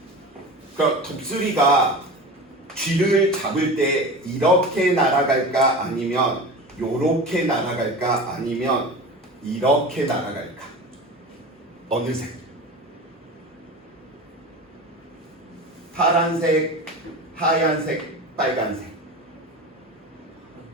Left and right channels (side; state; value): both; normal; correlation 0.31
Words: 그럼 독수리가 쥐를 잡을 때 이렇게 날아갈까 아니면 요렇게 날아갈까 아니면 이렇게 날아갈까? 어느 색? 파란색, 하얀색, 빨간색.